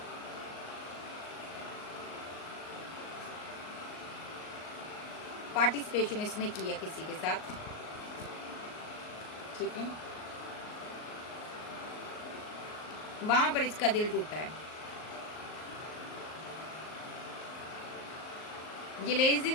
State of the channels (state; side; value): late; right; 38 ms